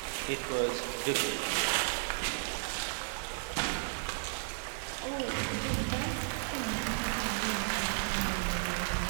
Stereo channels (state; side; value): silent; left; 55 dB below the other